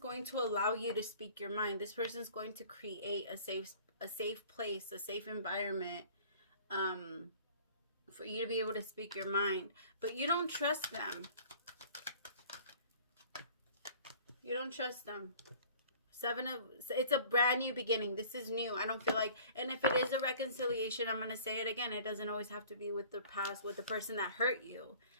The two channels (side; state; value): both; inverted; correlation -0.49